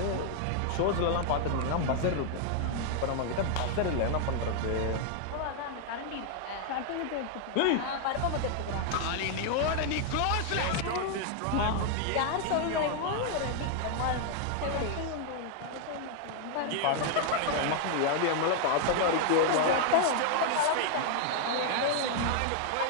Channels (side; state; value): both; different; correlation 0.00